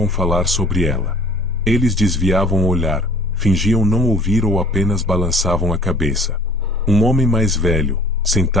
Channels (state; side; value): normal; both; correlation 0.52